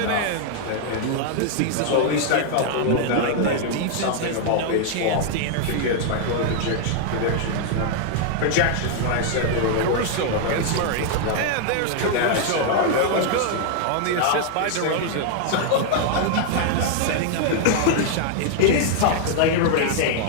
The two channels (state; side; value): different; both; correlation 0.00